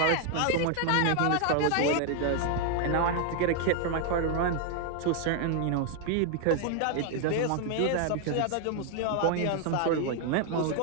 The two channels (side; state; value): both; different; correlation 0.00